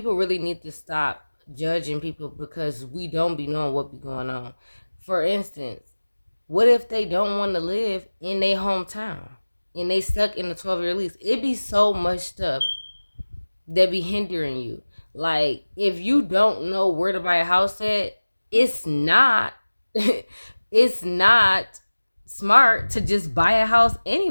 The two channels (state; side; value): inverted; both; correlation -1.00